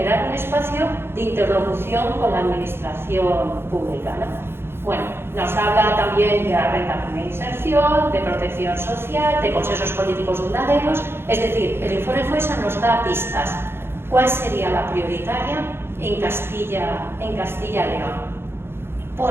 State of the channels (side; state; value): left; late; 0.11 ms